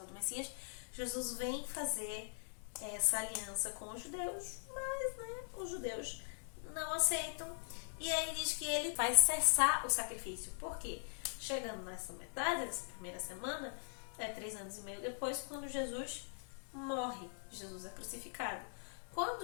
do Messias. Jesus vem fazer essa aliança com os judeus, mas os judeus não aceitam. E aí diz que ele vai cessar o sacrifício. Por quê? Chegando nessa metade, dessa primeira semana, 3 anos e meio depois, quando Jesus morre. Jesus é crucificado.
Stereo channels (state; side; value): silent; right; digital silence